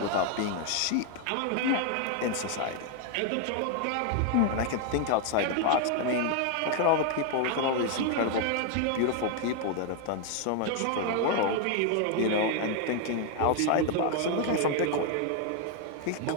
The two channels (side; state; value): both; different; correlation 0.00